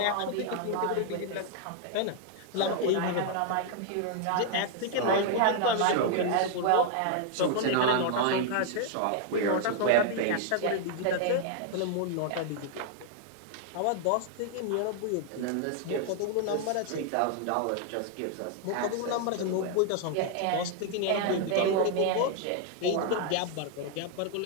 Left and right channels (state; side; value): different; both; correlation 0.00